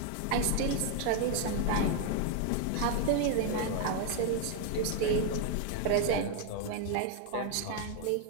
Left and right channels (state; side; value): different; both; correlation 0.00